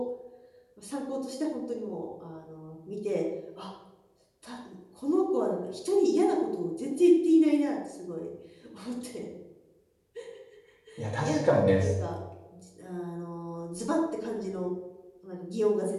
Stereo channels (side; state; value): both; identical; correlation 1.00